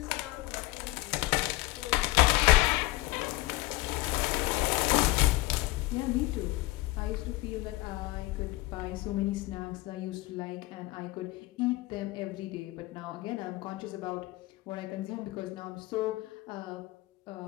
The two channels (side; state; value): right; quieter; 19.9 dB